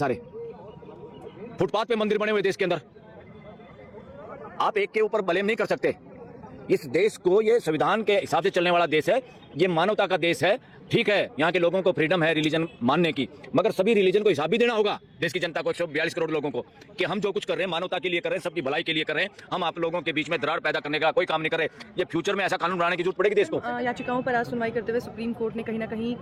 फुटपाथ पे मंदिर बने हुए देश के अंदर। आप एक के ऊपर ब्लेम नहीं कर सकते। इस देश को, ये संविधान के हिसाब से चलने वाला देश है, ये मानवता का देश है। ठीक है, यहाँ के लोगों को फ्रीडम है रिलीजन मानने की, मगर सभी रिलीजन को हिसाब भी देना होगा देश की जनता को, 142 करोड़ लोगों को, कि हम जो कुछ कर रहे हैं मानवता के लिए कर रहे हैं, सबकी भलाई के लिए कर रहे हैं। हम आप लोगों के बीच में दरार पैदा करने का कोई काम नहीं कर रहे। ये फ्यूचर में ऐसा कानून बनाने की जरूरत पड़ेगी देश को। याचिकाओं पर आज सुनवाई करते हुए सुप्रीम कोर्ट ने कहीं ना कहीं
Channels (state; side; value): identical; both; correlation 1.00